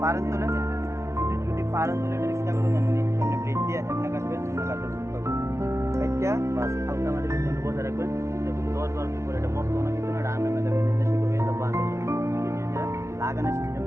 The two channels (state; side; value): late; left; 0.13 ms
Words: পারেন তোলে, যদি পারেন তোলে এটা চেষ্টা করবেন এমনি এমনি প্লেট দিয়ে এমনি কাটবেন, এমনি কাটবেন একটা বাস হালকা মাটির জন্য বসে রাখবেন। দেখুন 10-12 দিন পরে এটা মরতো না, কিন্তু এটা আমি দেখবেন দেশে করে এটা বাস লাগানোর সিস্টেম